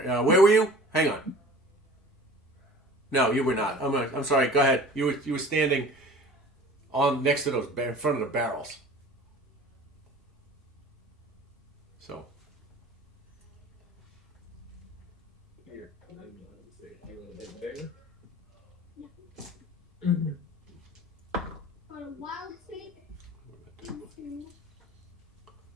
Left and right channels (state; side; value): normal; both; correlation 0.43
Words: Where were you? Hang on. No, you were not. I'm sorry. Go ahead. You were standing on next to those in front of the barrels. So Here, and then say you want to hit there. For a wild state into